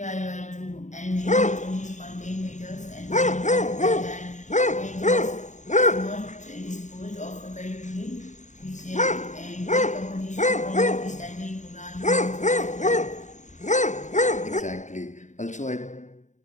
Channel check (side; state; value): right; late; 0.35 ms